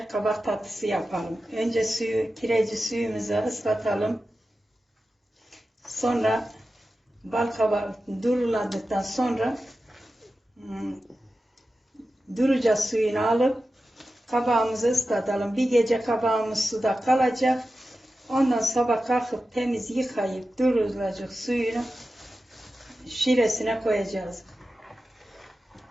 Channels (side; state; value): both; normal; correlation 0.93